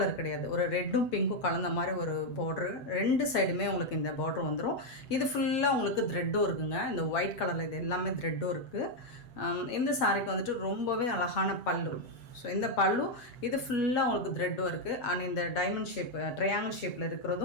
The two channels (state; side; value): late; right; 7.9 ms